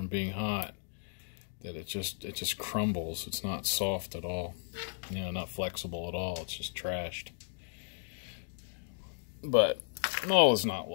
being hot that it just crumbles. It's not soft at all, you know, not flexible at all. It's just trashed. But all is not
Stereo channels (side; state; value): right; silent; digital silence